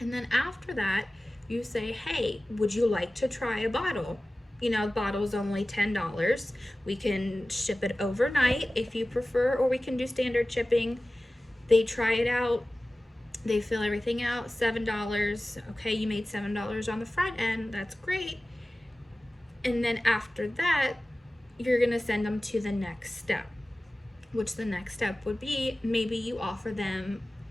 then after that, you say, hey, would you like to try a bottle? You know, the bottle's only $10. We can ship it overnight if you prefer, or we can do standard shipping. They try it out, they fill everything out, $7. Okay, you made $7 on the front end, that's great. And then after that, you're gonna send them to the next step, which the next step would be maybe you offer them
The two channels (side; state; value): both; normal; correlation 0.97